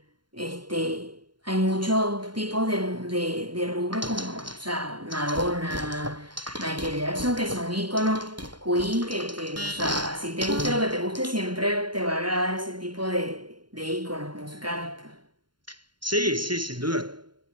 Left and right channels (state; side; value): late; left; 0.72 ms